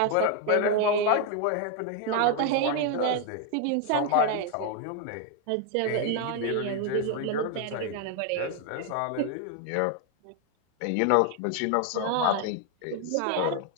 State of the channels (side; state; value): both; different; correlation 0.01